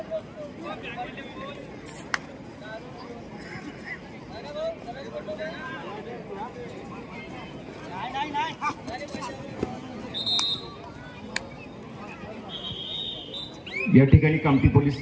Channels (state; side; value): identical; both; correlation 1.00